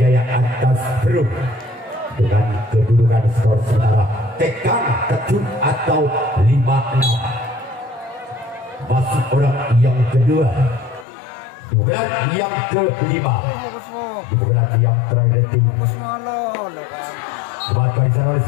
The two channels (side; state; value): right; drops out; at 11.1 s